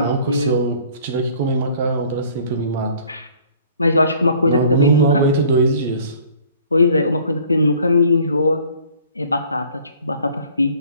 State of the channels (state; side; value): inverted; both; correlation -0.54